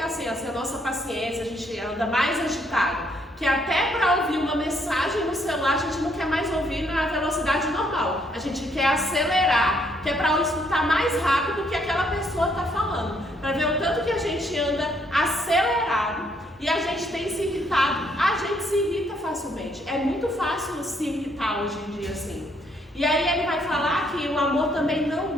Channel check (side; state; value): both; normal; correlation 0.70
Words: assim, a nossa paciência, a gente anda mais agitado. que até para ouvir uma mensagem no celular a gente não quer mais ouvir na velocidade normal. A gente quer acelerar, que é para escutar mais rápido do que aquela pessoa está falando. Para ver o tanto que a gente anda acelerado e a gente tem se irritado. A gente se irrita facilmente. É muito fácil se irritar hoje em dia assim. E aí ele vai falar que o amor também não